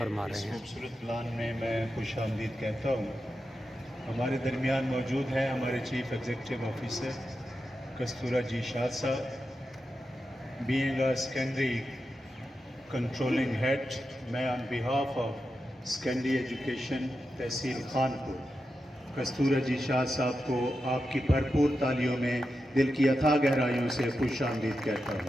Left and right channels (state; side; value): normal; both; correlation 0.89